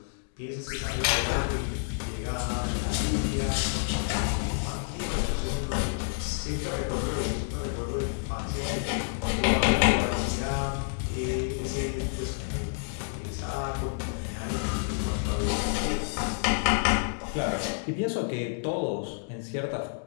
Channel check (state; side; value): silent; right; digital silence